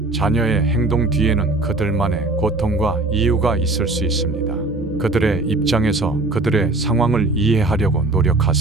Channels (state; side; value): quieter; left; 3.0 dB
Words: 자녀의 행동 뒤에는 그들만의 고통과 이유가 있을 수 있습니다. 그들의 입장에서 그들의 상황을 이해하려고